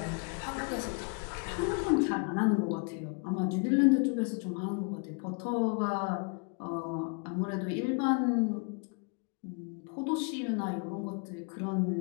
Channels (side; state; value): right; quieter; 35.8 dB